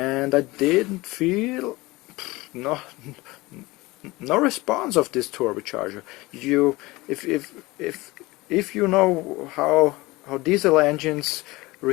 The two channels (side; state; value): right; quieter; 21.3 dB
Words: I didn't feel no response of this turbocharger. If you know how diesel engines